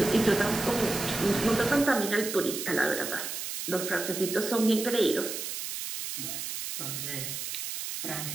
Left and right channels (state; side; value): noise; right; hiss, 5 dB below the sound